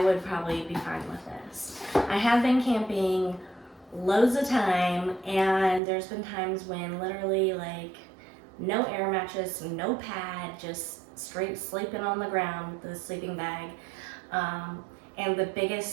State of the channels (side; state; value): left; drops out; at 5.8 s